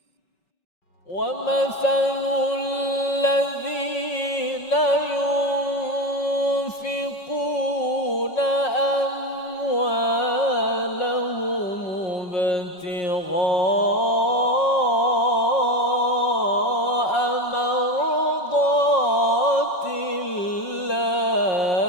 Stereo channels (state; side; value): late; right; 5.6 ms